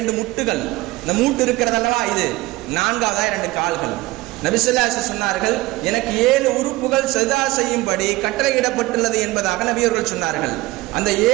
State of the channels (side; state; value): left; quieter; 19.7 dB